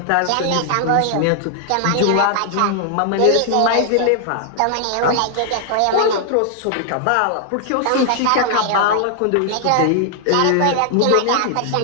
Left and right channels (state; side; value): different; both; correlation 0.00